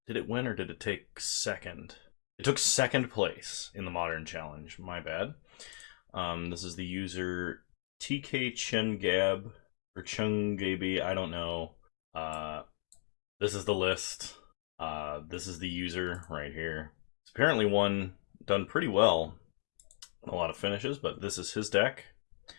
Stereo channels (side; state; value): right; silent; 54 dB below the other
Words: Did it win or did it take second? It took second place in the Modern challenge. My bad. This is the user TK Chengab or Chungaby. I don't know. This is the list. This is the user right here. It's apparently done pretty well. A lot of finishes, but this is his deck.